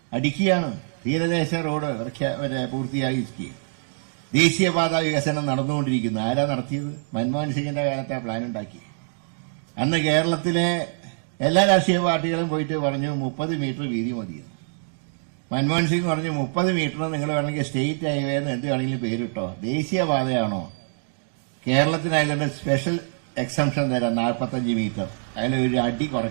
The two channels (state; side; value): silent; left; digital silence